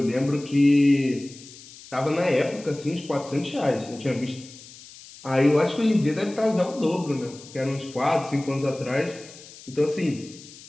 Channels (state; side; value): noise; left; hiss, 19 dB below the sound